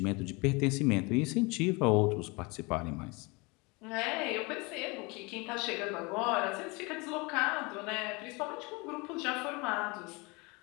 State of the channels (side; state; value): right; quieter; 27.1 dB